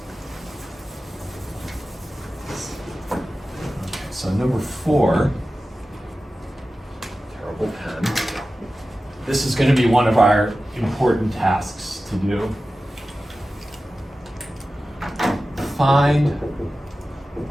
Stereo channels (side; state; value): both; normal; correlation 0.95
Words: Okay, so number 4, terrible pen. This is going to be one of our important tasks to do. Find